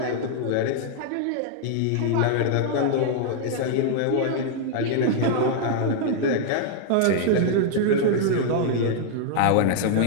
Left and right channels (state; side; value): different; both; correlation 0.00